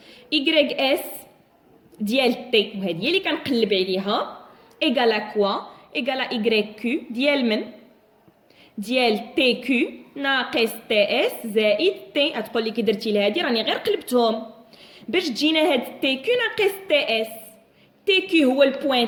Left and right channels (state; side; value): identical; both; correlation 1.00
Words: اي اس ديال تي وهذه هي اللي كنقلب عليها ايغال كوا ايغال اي كيو ديال من ديال تي كيو ناقص تي اس زائد تي. غتقول لي كي درتي لهادي راني غير قلبتهم باش تجينا هاد تي كيو ناقص تي اس. تي كيو هو البوين